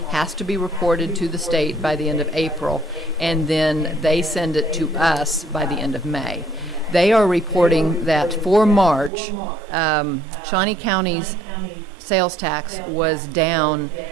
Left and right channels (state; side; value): drops out; left; at 9.1 s